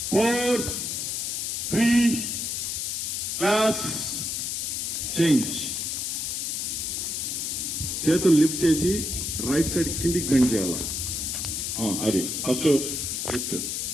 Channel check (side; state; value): left; noise; hiss, 2 dB below the sound